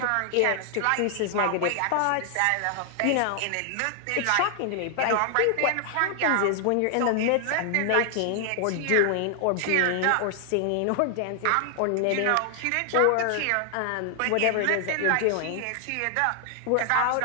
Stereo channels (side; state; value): both; different; correlation 0.00